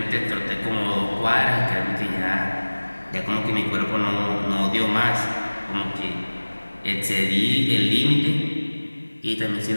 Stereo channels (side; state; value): both; inverted; correlation -1.00